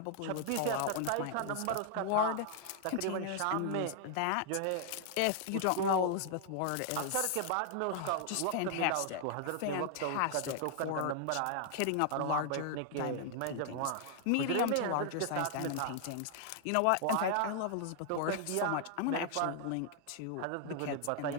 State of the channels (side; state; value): both; different; correlation 0.00